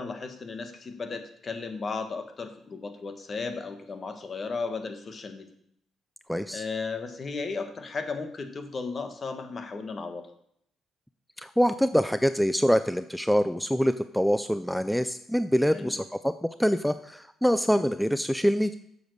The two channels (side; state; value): both; normal; correlation 0.97